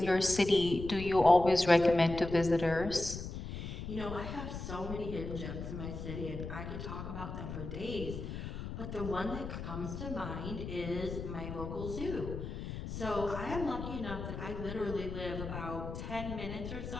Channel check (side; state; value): left; noise; rumble, 7 dB below the sound